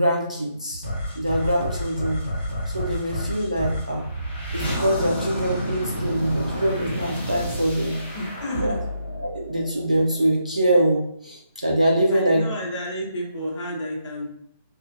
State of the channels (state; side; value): inverted; both; correlation -0.79